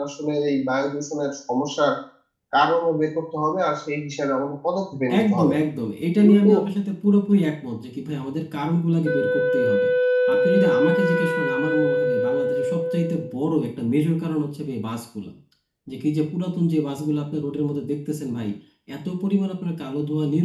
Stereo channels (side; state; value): both; identical; correlation 1.00